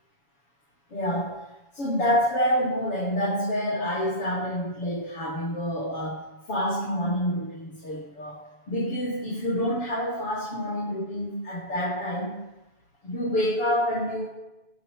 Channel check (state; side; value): late; right; 7.1 ms